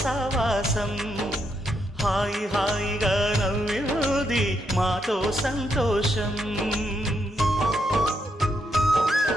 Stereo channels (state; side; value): normal; both; correlation 0.78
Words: సావాసం, హాయి హాయిగా నవ్వింది మాతో సంతోషం.